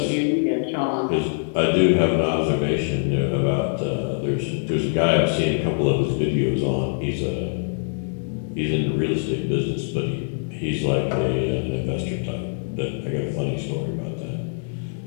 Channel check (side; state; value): right; silent; digital silence